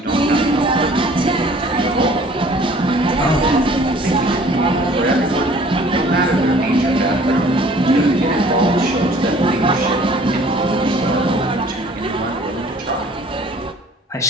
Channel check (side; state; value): both; normal; correlation 0.53